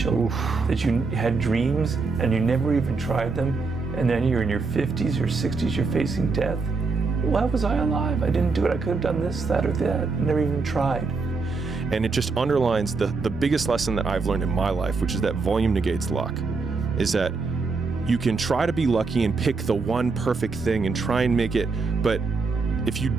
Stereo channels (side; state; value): left; quieter; 4.3 dB